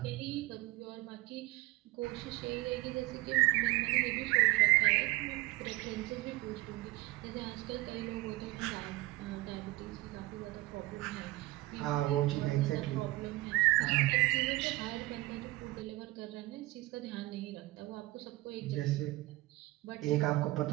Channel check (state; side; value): quieter; left; 19.8 dB